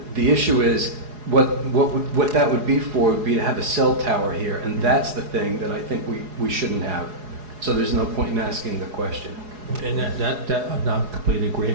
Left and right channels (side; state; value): left; late; 4.8 ms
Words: the issue is what that would be for would be to have a cell tower here, and that's the thing that I think we shouldn't have. So there's no point in asking the question. And that I'm not in complete